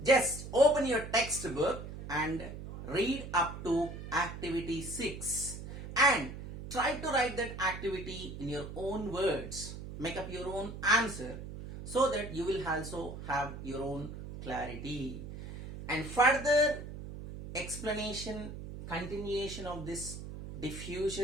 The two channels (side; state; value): right; noise; hum, 10 dB below the sound